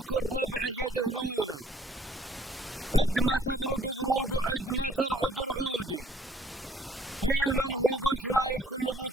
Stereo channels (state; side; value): normal; both; correlation 0.62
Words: ربعه يدهلونه، عد ما تبرق بروق وعد ما ترعد رعودي، قيل من هو قلت نايف كل